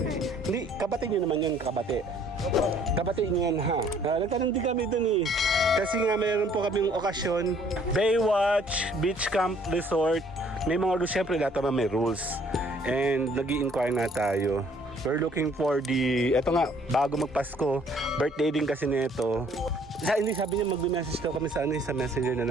Hindi, kabate nyo naman yun, kabate. Kabate nyo yan ha. Nagtanong din kami doon Kasi nga mayroon po kaming okasyon. Baywatch, Beach Camp Resort. May mga rules, syempre lahat naman may rules. And nag-i-inquire nga tayo. We're looking for eto nga, bago magpasko. Birthday din kasi nito. Hindi, sabi niya mag-message daw kami sa messenger na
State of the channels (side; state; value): both; normal; correlation 0.60